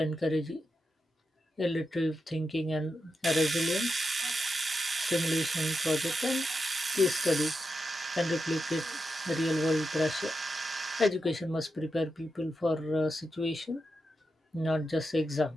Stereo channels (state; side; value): normal; both; correlation 0.87